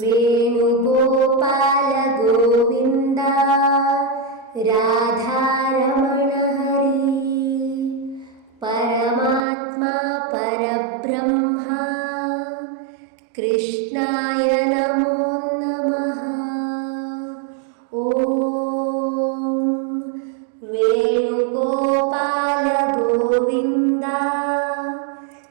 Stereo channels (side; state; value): left; drops out; at 9.4 s